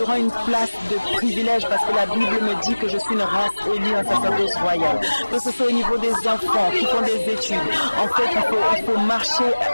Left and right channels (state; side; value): inverted; both; correlation -1.00